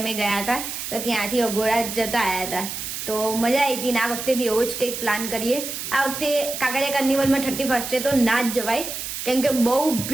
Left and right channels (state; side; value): noise; right; hiss, 6 dB below the sound